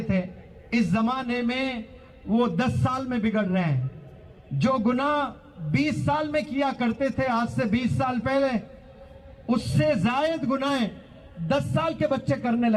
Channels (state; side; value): identical; both; correlation 1.00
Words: थे, इस जमाने में वो 10 साल में बिगड़ रहे हैं। जो गुनाह 20 साल में किया करते थे आज से 20 साल पहले, उससे जायद गुनाह 10 साल के बच्चे करने